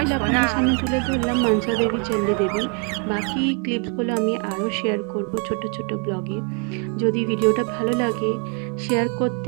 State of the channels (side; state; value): left; quieter; 38.1 dB